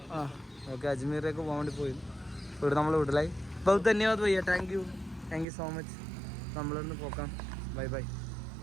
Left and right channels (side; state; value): left; drops out; at 5.5 s